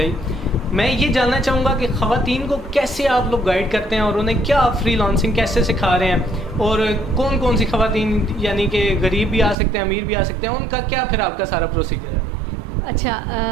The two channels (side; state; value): left; drops out; at 9.6 s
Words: मैं ये जानना चाहूँगा कि ख़वातीन को कैसे आप लोग गाइड करते हैं और उन्हें क्या आप फ्रीलांसिंग कैसे सिखा रहे हैं और कौन कौन सी ख़वातीन, यानी कि गरीब भी आ सकते हैं, अमीर भी आ सकते हैं, उनका क्या फिर आपका सारा प्रोसीजर है? अच्छा,